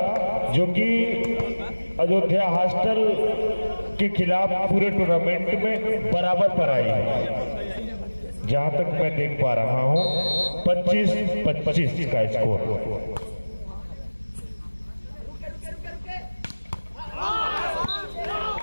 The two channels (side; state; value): both; inverted; correlation -1.00